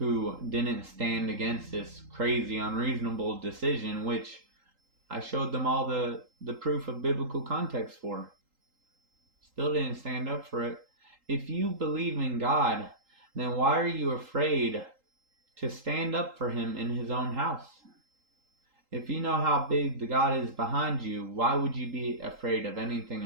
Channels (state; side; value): late; left; 3.8 ms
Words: didn't stand against this crazy, unreasonable decision, which I showed them all the proof of biblical context for. Still didn't stand up for it. If you believe in God, then why are you afraid to stand up for Him in His own house? If you know how big the God is behind you, why would you be afraid of anything